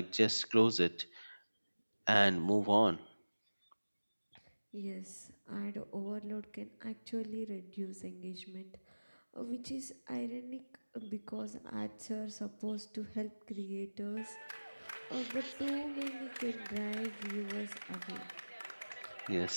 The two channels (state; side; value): inverted; both; correlation -1.00